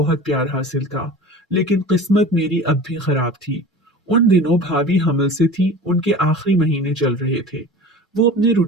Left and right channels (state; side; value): normal; both; correlation 0.37